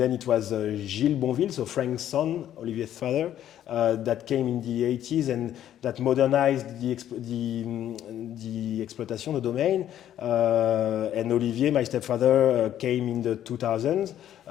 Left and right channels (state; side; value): quieter; right; 11.2 dB